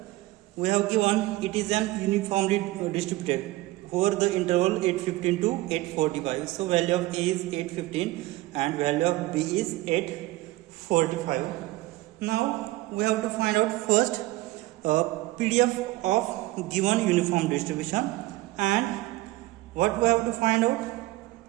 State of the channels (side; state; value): left; quieter; 18.5 dB